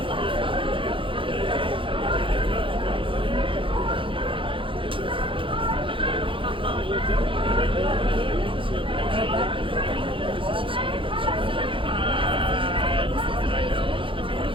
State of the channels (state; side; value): late; left; 0.25 ms